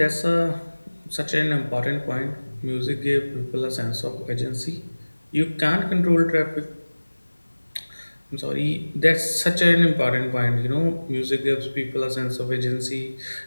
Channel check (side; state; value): both; inverted; correlation -1.00